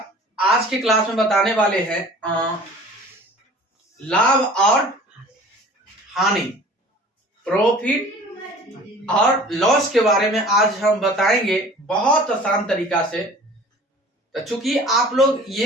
आज की क्लास में बताने वाले हैं लाभ और हानि, प्रॉफिट और लॉस के बारे में आज हम बताएंगे बहुत आसान तरीका से। तो चूंकि आप लोग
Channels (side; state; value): both; normal; correlation 0.46